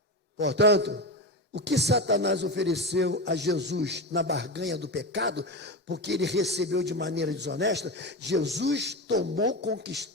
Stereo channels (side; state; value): both; normal; correlation 0.19